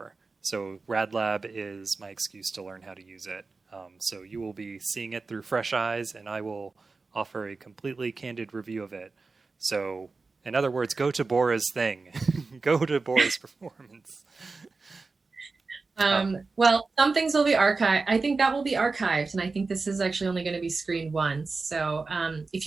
So RadLab is my excuse to learn how to use it. So you will be seeing it through fresh eyes, and I will offer a completely candid review of it. So, in other words, go to Bora's thing. Go to Bora's performance. Well, some things will be archived. I think that will be archived, and I think this is actually only going to be screened once. So if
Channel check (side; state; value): left; quieter; 4.0 dB